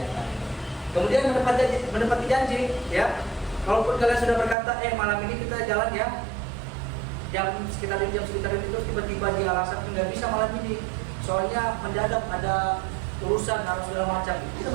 Kemudian menepati janji, ya. Kalaupun kalian sudah berkata, malam ini kita jalan ya, jam sekitar itu terus tiba-tiba di alasan nggak bisa malam ini, soalnya mendadak ada urusan harus segala macam, kita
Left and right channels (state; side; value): drops out; left; at 4.5 s